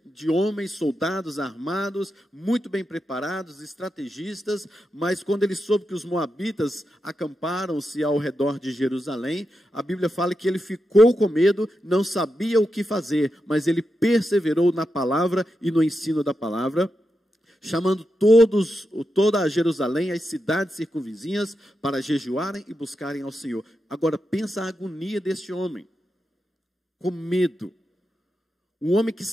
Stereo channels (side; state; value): both; normal; correlation 0.87